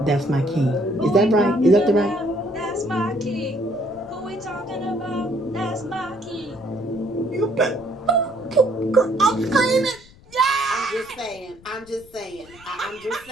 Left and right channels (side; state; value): left; noise; rumble, 24 dB below the sound